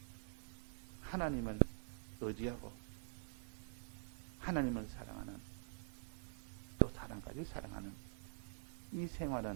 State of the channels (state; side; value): silent; left; digital silence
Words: 하나님을 의지하고 하나님을 사랑하는 또 사람까지 사랑하는 이